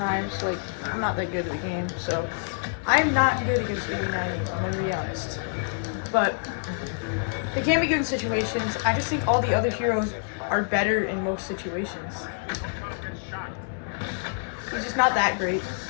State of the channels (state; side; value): silent; right; digital silence